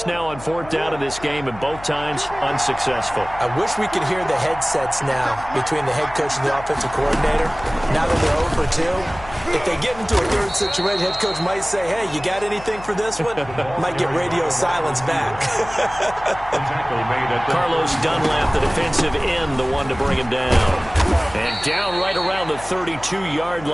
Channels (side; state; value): left; noise; hum, 17 dB below the sound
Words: now on 4th down in this game, and both times unsuccessful. I wish we could hear the headsets now between the head coach and the offensive coordinator. Now that they're 0 for 2, if they get into a third situation, head coach might say, hey, you got anything for this one? Might get radio silence back. Carlos Dunlap, the defensive end, the one to bring him down. And down right around the 32-yard